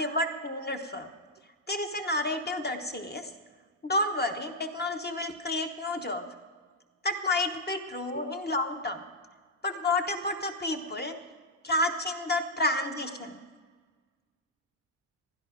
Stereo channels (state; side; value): normal; both; correlation -0.05